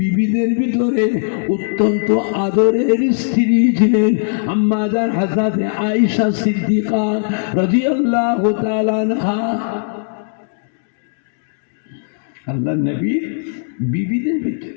ভিতরে অত্যন্ত আদরের স্ত্রী ছিলেন আম্মা জান হযরত আয়েশা সিদ্দিকা রাদিয়াল্লাহু তাআলা আনহা। আল্লাহ নবী বিবিদের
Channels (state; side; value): silent; right; digital silence